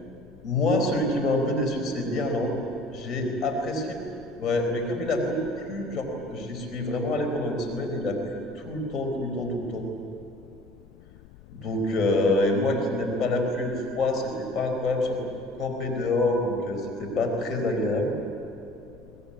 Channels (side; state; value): left; noise; rumble, 22 dB below the sound